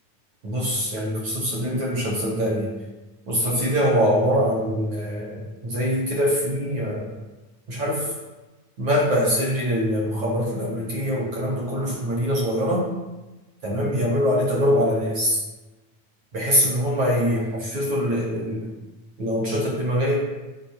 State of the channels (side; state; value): left; late; 9.3 ms